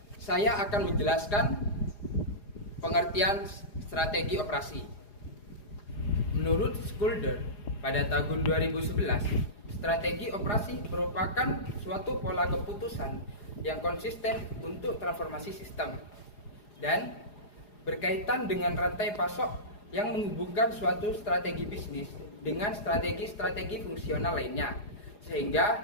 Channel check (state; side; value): late; right; 4.9 ms